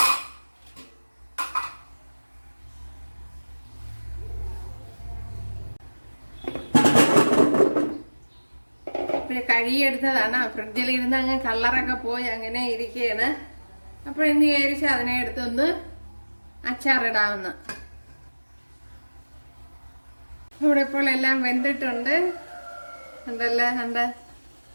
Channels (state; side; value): inverted; both; correlation -1.00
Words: കഴുകിയെടുത്തതാണ്. ഫ്രിഡ്ജിൽ ഇരുന്ന് അങ്ങ് കളറൊക്കെ പോയി അങ്ങനെ ഇരിക്കുകയാണ്. അപ്പോൾ ഇന്ന് വിചാരിച്ച് അതിനെ എടുത്തൊന്ന് അച്ചാറിടാവുന്ന. ഇവിടെ ഇപ്പോൾ എല്ലാം വെന്തിട്ടുണ്ട്. കണ്ട